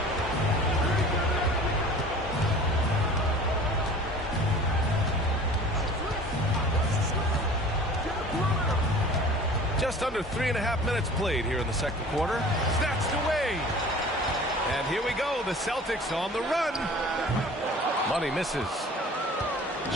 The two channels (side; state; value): both; normal; correlation 0.44